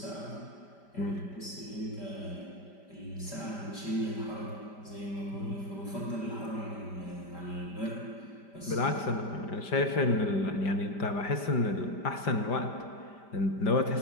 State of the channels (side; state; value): right; late; 5.1 ms